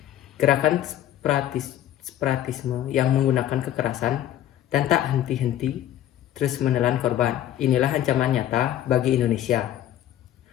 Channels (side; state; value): right; quieter; 12.0 dB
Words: Gerakan separatisme yang menggunakan kekerasan dan tak henti-henti terus menelan korban. Inilah ancaman nyata bagi Indonesia.